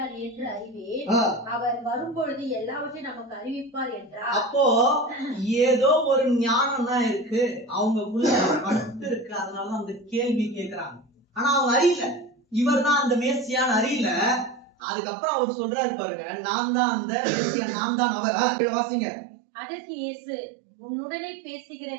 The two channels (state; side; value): drops out; left; at 14.7 s